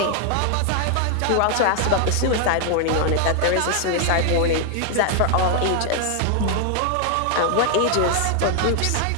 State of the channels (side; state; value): both; different; correlation 0.00